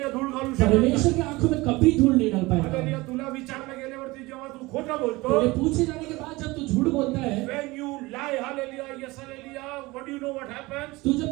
धूळ घालू शकत परमेश्वर की आंखों में कभी धूल नहीं डाल आलेली पाएगा। तुला विचारलं गेल्यावरती जेव्हा तू खोटं बोलतो तेरे पूछे जाने के बाद जब तू झूठ बोलता है, when you lie hallelujah yes hallelujah what do you know what happens तू जब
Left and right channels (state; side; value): quieter; left; 21.7 dB